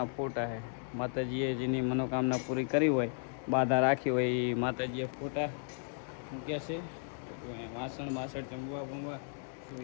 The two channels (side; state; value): right; silent; digital silence